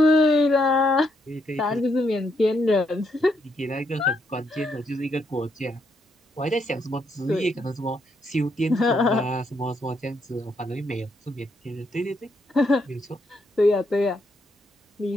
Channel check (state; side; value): normal; both; correlation 0.76